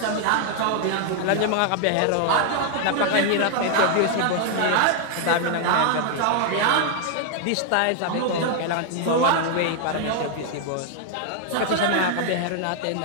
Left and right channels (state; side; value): different; both; correlation 0.00